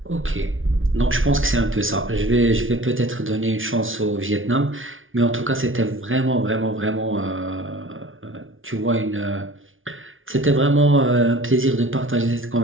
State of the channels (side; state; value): left; late; 0.58 ms